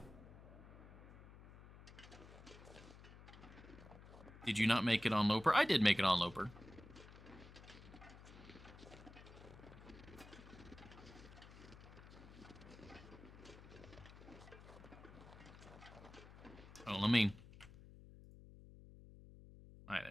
Did you not make it on Loper? I did make it on Loper. Oh, let me... Alright,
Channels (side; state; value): left; noise; hum, 17 dB below the sound